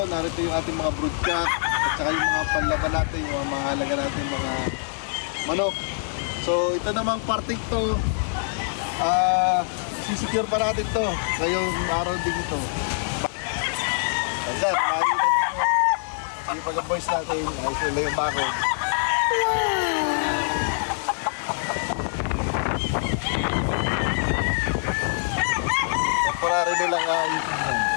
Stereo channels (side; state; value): right; silent; digital silence